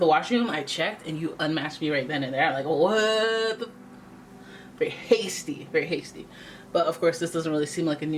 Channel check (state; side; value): identical; both; correlation 1.00